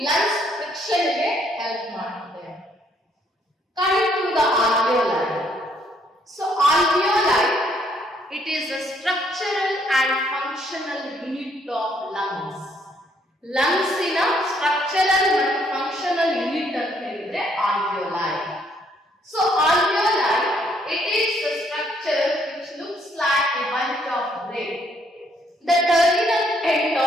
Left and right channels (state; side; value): normal; both; correlation 0.68